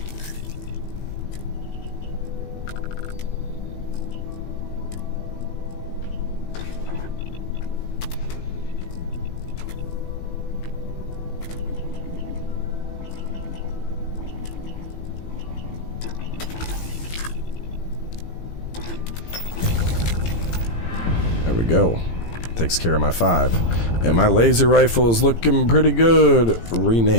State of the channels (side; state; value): right; late; 18 ms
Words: There we go. Takes care of my 5. And my laser rifle is looking pretty good.